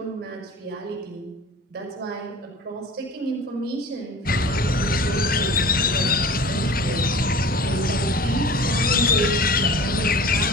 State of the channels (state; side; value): normal; both; correlation 0.40